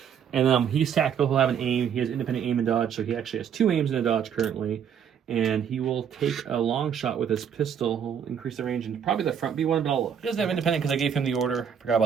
And he's tactical. He'll have an aim. He has independent aim and dodge. So he actually has 2 aims and a dodge currently. And he will take a long shot with his pistol. He'll increase the range and probably the front B1, but I'll look. He doesn't have independent because I gave him the order. Forgot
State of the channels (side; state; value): left; quieter; 8.0 dB